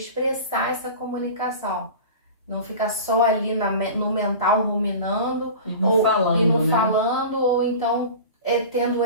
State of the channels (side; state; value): both; inverted; correlation -0.34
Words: essa comunicação. Não ficar só ali no mental ruminando e não falando, ou então tendo